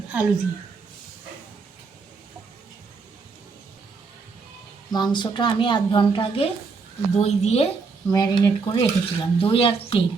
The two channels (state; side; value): quieter; left; 4.7 dB